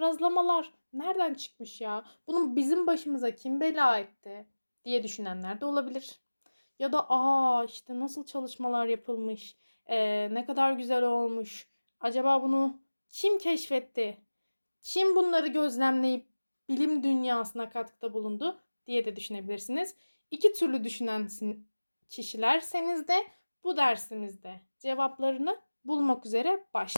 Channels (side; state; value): both; inverted; correlation -1.00